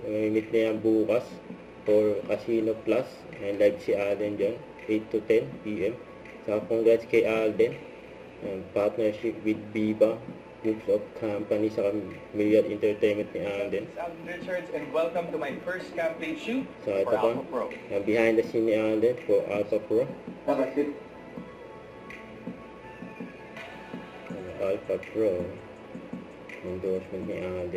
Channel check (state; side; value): identical; both; correlation 1.00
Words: May meet na yan bukas for Casino Plus, and live si Alden dyan 8 to 10 PM. Saka congrats kay Alden, partnership with Viva Groups of Company sa Myriad Entertainment ni Alden. I'm Richards and welcome to my first campaign shoot So ito for pa, Alpha Pro. behind the scene ni Alden for Alpha Pro. Alpha Pro, endorsement ni